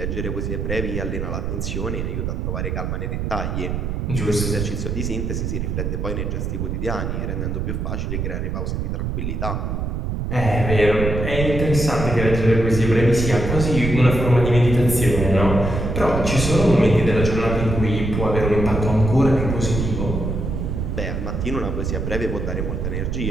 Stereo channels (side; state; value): right; noise; rumble, 2 dB below the sound